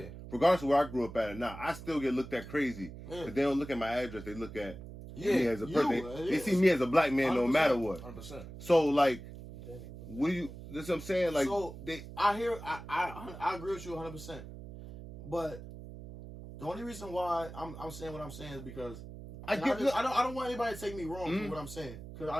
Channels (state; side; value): noise; right; hum, 13 dB below the sound